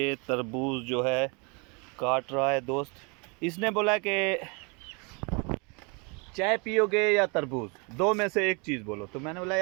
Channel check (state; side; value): quieter; left; 31.9 dB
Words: तरबूज जो है काट रहा है दोस्त। इसने बोला कि चाय पियोगे या तरबूज, दो में से एक चीज़ बोलो। तो मैंने बोला